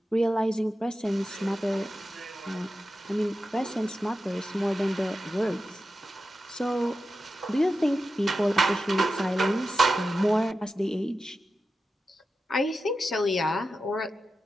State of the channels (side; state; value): both; normal; correlation 0.91